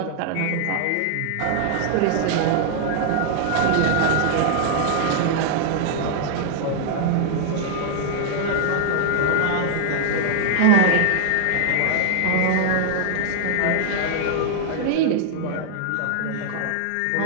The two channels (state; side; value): different; both; correlation 0.00